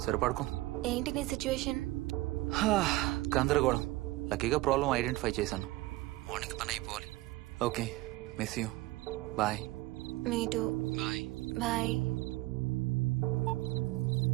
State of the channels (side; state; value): left; quieter; 19.4 dB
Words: సరే పడుకో. ఏంటి నీ సిచ్యువేషన్? గందరగోళం. లక్కీగా ప్రాబ్లం ఐడెంటిఫై చేశాను. మార్నింగ్ పని అయిపోవాలి. Okay, miss you. Bye. Me too. Bye. Bye.